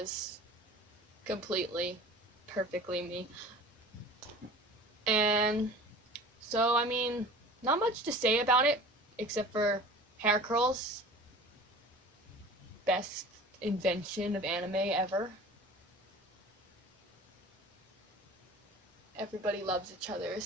Completely, perfectly me. And so, I mean, not much to say about it, except for hair curls. Best invention of anime ever. Everybody loves each other,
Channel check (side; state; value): both; normal; correlation 0.41